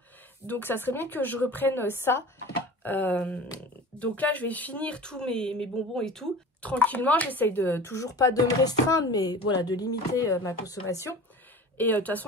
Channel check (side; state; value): both; normal; correlation 0.37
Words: Donc ça serait bien que je reprenne ça. Donc là, je vais finir tous mes bonbons et tout. Tranquillement, j'essaye de toujours pas de me restreindre. Mais voilà, de limiter ma consommation. Et de toute